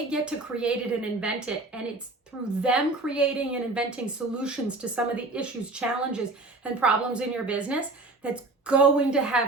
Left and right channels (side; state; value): left; quieter; 3.1 dB